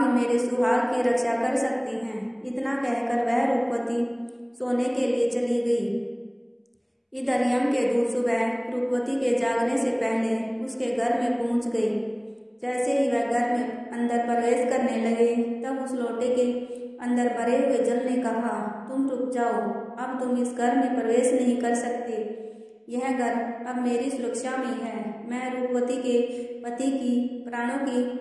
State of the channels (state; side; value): identical; both; correlation 1.00